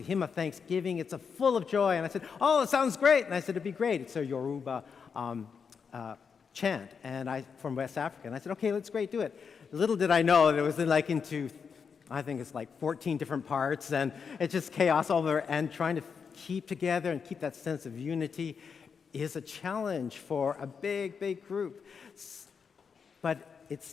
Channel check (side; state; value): right; quieter; 6.1 dB